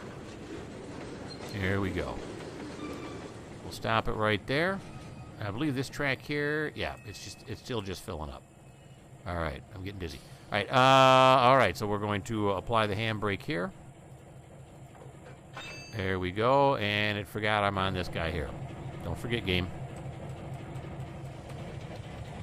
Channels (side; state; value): both; identical; correlation 1.00